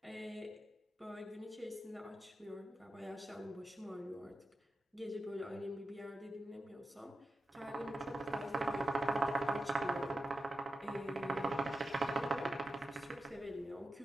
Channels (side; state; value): both; normal; correlation 0.91